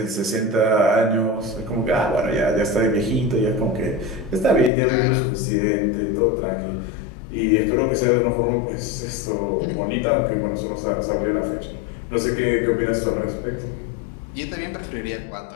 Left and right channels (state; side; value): drops out; right; at 4.7 s